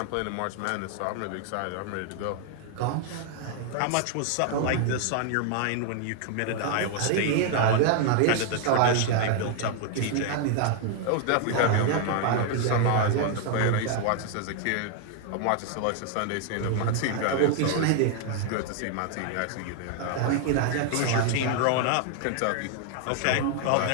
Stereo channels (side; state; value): both; different; correlation 0.00